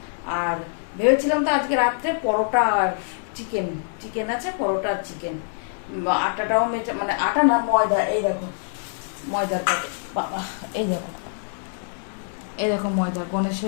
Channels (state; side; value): silent; right; digital silence